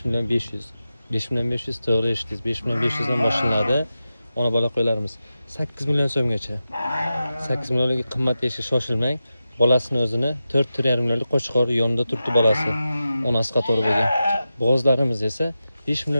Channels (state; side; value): inverted; both; correlation -0.91